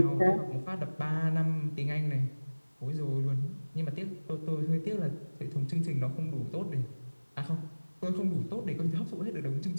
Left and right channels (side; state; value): both; inverted; correlation -1.00